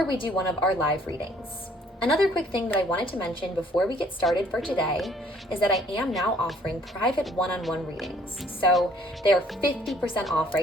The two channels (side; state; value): both; normal; correlation 0.60